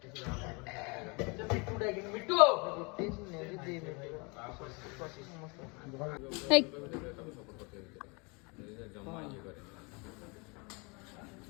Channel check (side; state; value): right; quieter; 30.1 dB